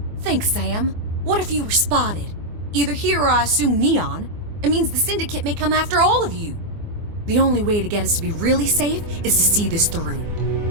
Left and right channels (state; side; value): late; left; 24 ms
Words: Thanks, Sam. What if you were spotted? Either here or I assume Neon. It means the Syndicate may come after all of you. The only way to get us to be really safe is to see this through.